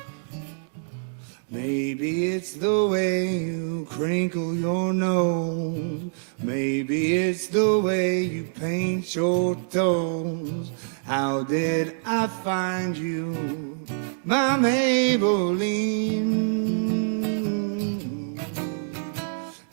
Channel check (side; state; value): left; silent; digital silence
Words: Maybe it's the way you crinkle your nose. Maybe it's the way you paint your toes. How did I find you, my Maybelline?